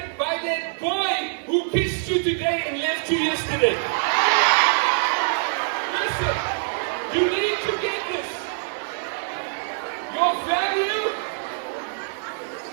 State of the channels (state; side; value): silent; left; digital silence